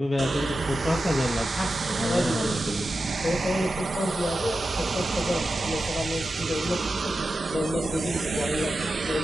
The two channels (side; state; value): both; normal; correlation 0.91